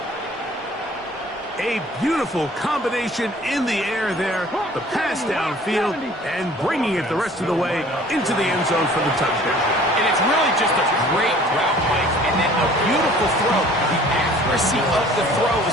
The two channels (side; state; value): both; normal; correlation 0.51